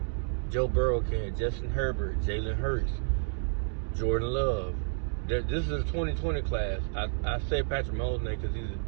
Joe Burrow can, Justin Herbert, Jalen Hurts, Jordan Love. This is a 2020 class. I say Patrick Mahomes name because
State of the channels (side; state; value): left; silent; digital silence